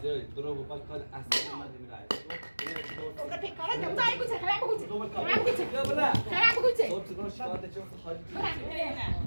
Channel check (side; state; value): both; inverted; correlation -1.00